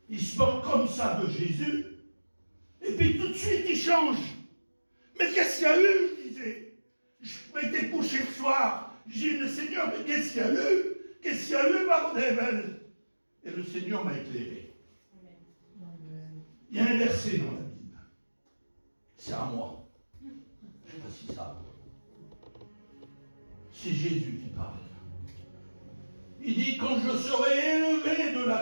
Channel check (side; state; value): both; inverted; correlation -1.00